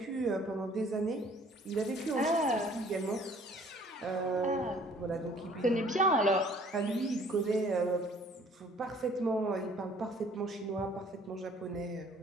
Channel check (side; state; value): both; normal; correlation 0.56